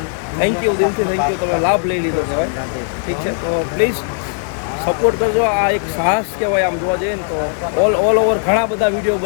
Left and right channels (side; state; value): right; silent; digital silence